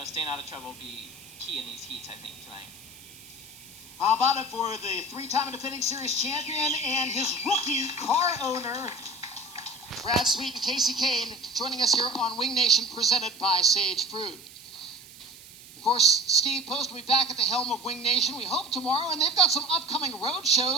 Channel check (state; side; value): noise; right; hiss, 20 dB below the sound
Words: staying out of trouble will be key in these heats, I think, tonight. How about it for the 3-time defending series champion and his rookie car owner, Brad Sweet and Kasey Kahne, joining us here on Wing Nation, presented by Sage Fruit. Of course, Steve Post will be back at the helm of Wing Nation, we hope tomorrow, and they've got some upcoming road